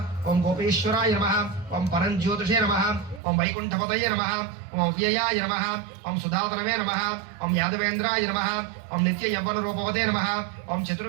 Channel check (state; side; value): drops out; left; at 3.2 s